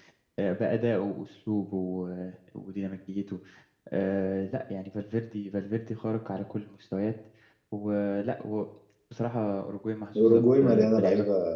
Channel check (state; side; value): identical; both; correlation 1.00